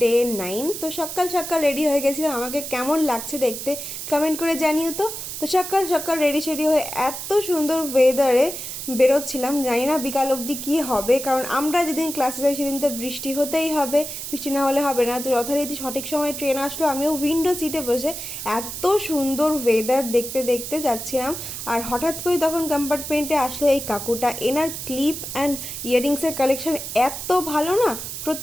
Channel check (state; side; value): noise; right; hiss, 7 dB below the sound